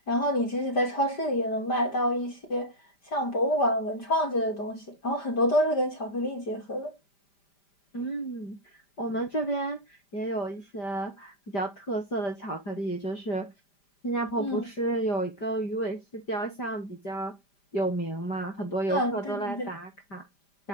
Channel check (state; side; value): late; right; 5.0 ms